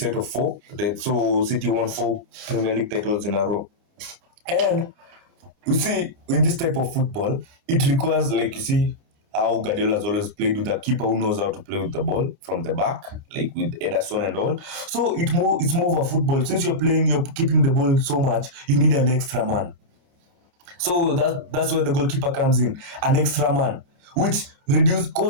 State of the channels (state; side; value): late; left; 29 ms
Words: of four. So City won four Premier League titles in a row. And you see, in this type of football, it requires, like, you see, how Guardiola has always played with a keeper who knows how to play with the ball from the back, like with Ederson and all. So it's more of a football. Since you're keeping the ball so much, you need an extra man. So that's where the goalkeeper comes in, an extra man, which reduce,